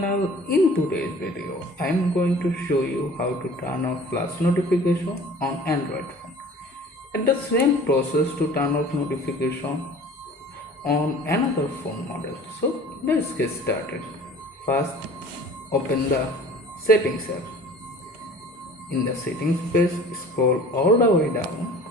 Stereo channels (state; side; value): normal; both; correlation 0.46